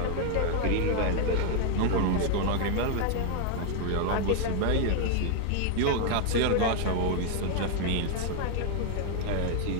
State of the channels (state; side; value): different; both; correlation 0.00